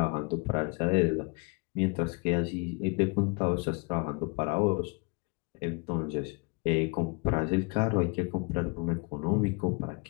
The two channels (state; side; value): quieter; right; 30.8 dB